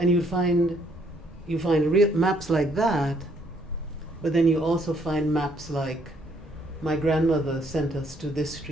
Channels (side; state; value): both; normal; correlation 0.67